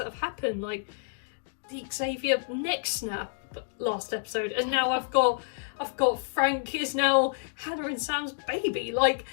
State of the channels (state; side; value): silent; right; digital silence